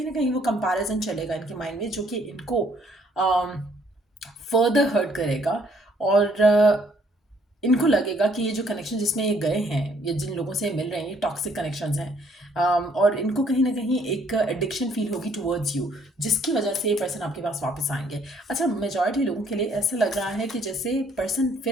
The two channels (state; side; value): normal; both; correlation 0.65